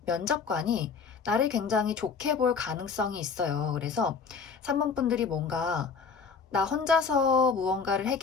면접관이 나를 굉장히 좋게 볼 가능성이 있어요. 그래서 3번 분들이 뭔가 나 혼자서 무언가를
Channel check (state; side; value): quieter; right; 5.5 dB